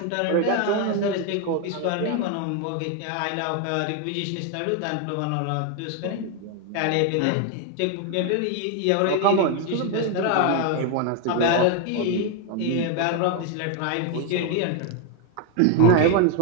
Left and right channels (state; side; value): different; both; correlation 0.01